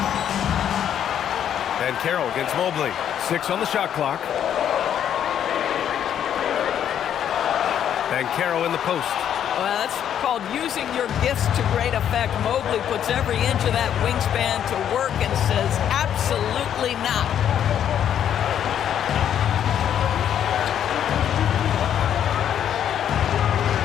Banchero against Mobley. 6 on the shot clock. Banchero in the post. Well, that's called using your gifts to great effect. Mobley puts every inch of that wingspan to work and says, absolutely not.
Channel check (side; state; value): right; quieter; 9.6 dB